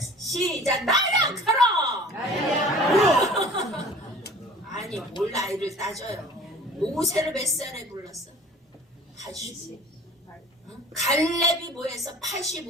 나이아가라. 아니 뭘 나이를 따져요. 모세를 몇 살에 불렀어? 80. 갈렙이 뭐해서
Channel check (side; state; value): both; normal; correlation 0.45